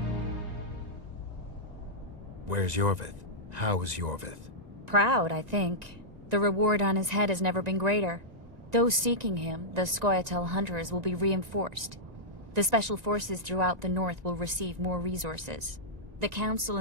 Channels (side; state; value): left; late; 1.9 ms